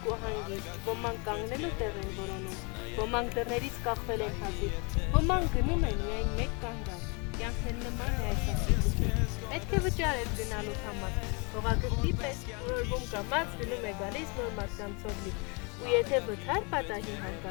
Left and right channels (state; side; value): quieter; right; 32.0 dB